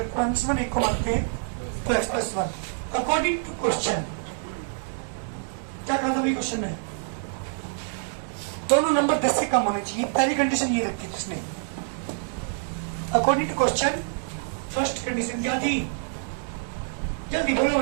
प्लस 1, एक को मानते 2x plus 1। According to question, क्या कहा था भाई क्वेश्चन में? दोनों नंबर 10 से कम होने चाहिए, पहली कंडीशन ये रखी थी उसने। According to question first condition क्या थी? जल्दी बोलो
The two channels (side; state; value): left; silent; digital silence